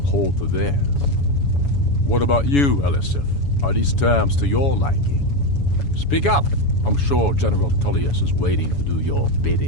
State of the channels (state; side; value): late; right; 7.1 ms